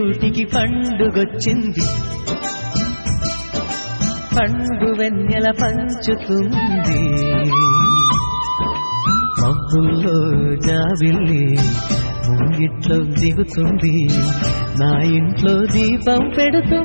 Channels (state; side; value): inverted; both; correlation -1.00